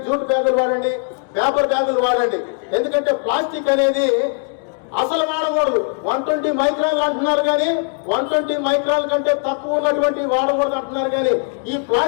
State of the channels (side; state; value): right; silent; 57 dB below the other